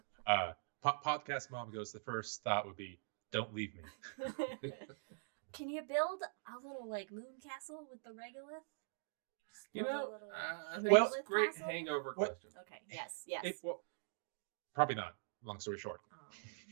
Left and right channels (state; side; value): silent; left; digital silence